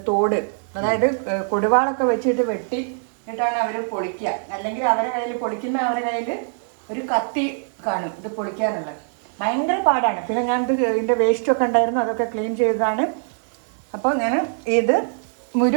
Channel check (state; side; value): silent; left; digital silence